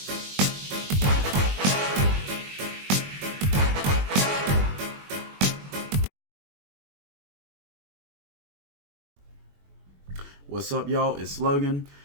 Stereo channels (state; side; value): late; left; 21 ms